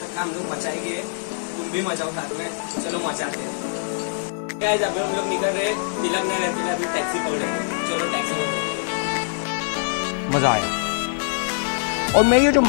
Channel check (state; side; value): silent; right; 62 dB below the other